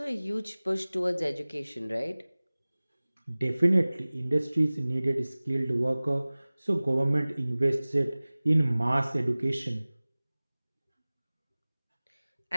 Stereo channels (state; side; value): inverted; both; correlation -0.99